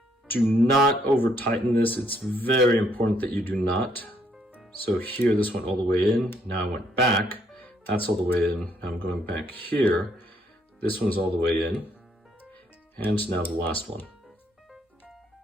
Do not over tighten this. It's very important that you do not. So here, this went all the way in. Now I went back. That's all the way in. Now I'm going back here. This one's all the way in. And now the last one.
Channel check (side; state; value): both; normal; correlation 0.70